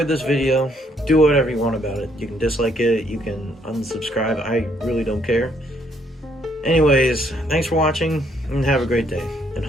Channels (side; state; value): both; normal; correlation 0.69